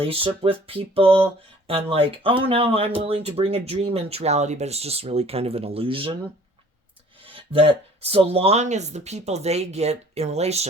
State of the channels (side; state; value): both; normal; correlation 0.53